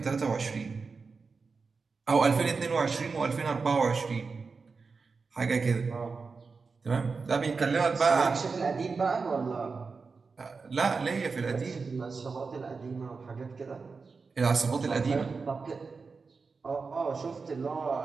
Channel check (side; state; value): left; quieter; 4.6 dB